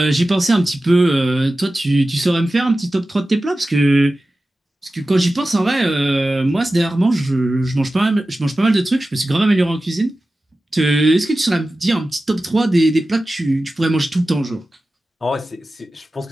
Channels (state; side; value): normal; both; correlation 0.95